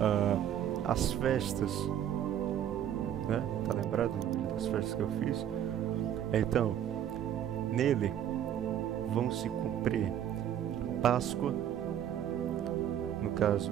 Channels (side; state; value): left; quieter; 10.3 dB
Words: As festas, né? Tá lembrado das festas que eu fiz? Então, nele vão se cumprir Páscoa, no caso,